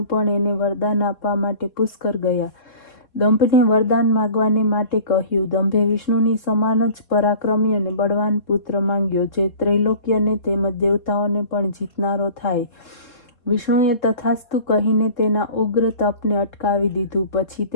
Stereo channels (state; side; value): late; right; 4.1 ms